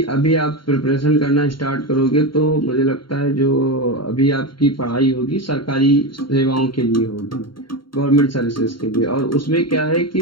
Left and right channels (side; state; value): right; late; 0.73 ms